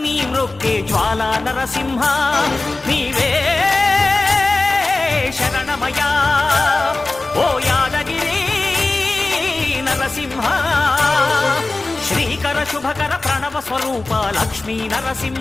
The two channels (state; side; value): quieter; right; 3.2 dB